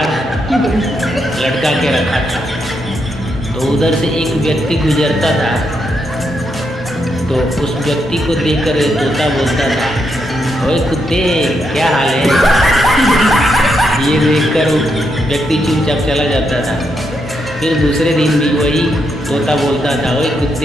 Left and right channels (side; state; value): both; normal; correlation 0.80